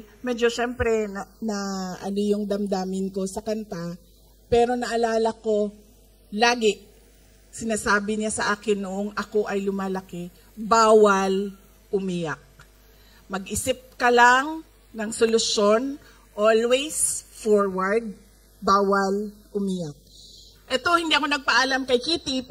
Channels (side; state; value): both; identical; correlation 1.00